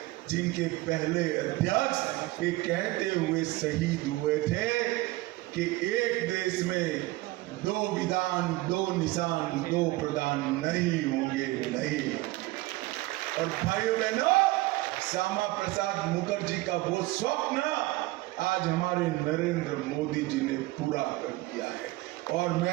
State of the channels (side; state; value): left; quieter; 19.5 dB